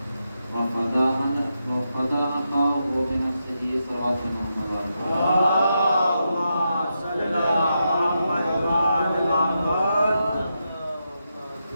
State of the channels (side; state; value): both; inverted; correlation -0.85